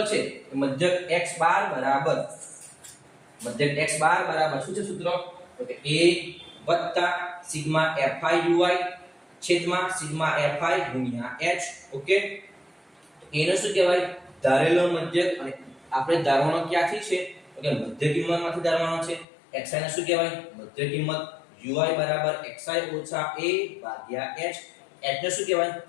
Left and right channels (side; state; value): right; drops out; at 19.2 s